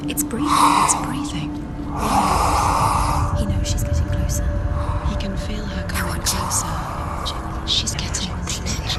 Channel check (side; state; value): both; identical; correlation 1.00